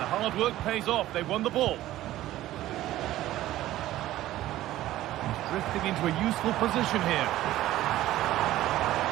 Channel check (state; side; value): quieter; left; 14.8 dB